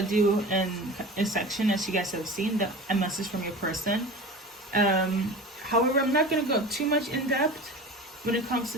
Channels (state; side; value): normal; both; correlation 0.34